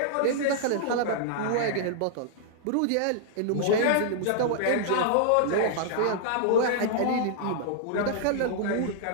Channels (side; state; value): both; different; correlation -0.01